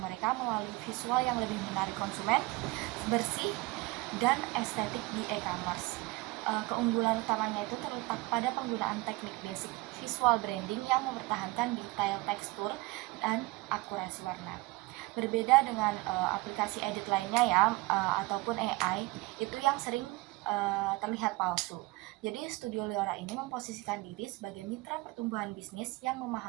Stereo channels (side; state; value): left; quieter; 22.5 dB